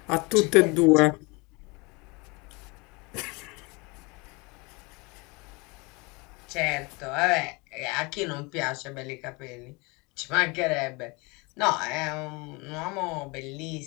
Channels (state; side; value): quieter; right; 27.2 dB